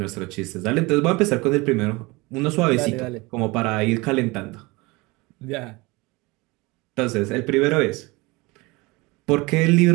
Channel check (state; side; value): quieter; left; 24.0 dB